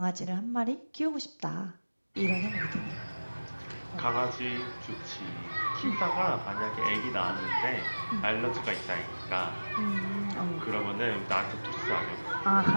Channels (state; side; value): inverted; both; correlation -1.00